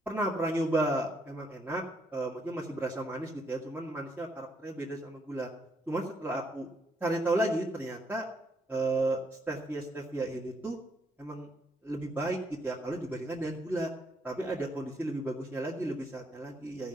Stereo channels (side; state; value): both; normal; correlation 0.74